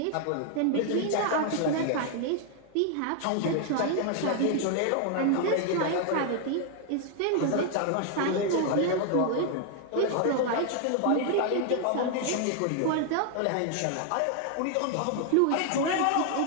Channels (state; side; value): different; both; correlation 0.00